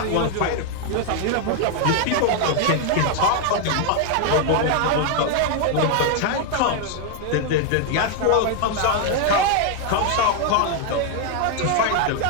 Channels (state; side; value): different; both; correlation 0.00